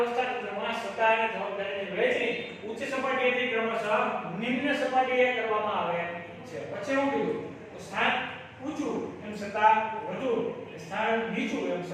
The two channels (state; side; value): identical; both; correlation 1.00